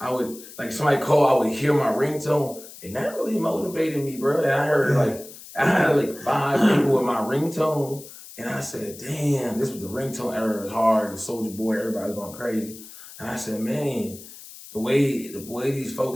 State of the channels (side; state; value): left; noise; hiss, 17 dB below the sound